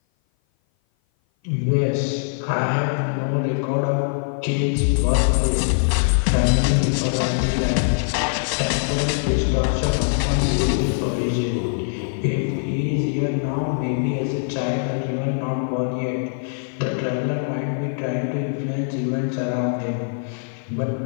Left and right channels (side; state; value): right; silent; 57 dB below the other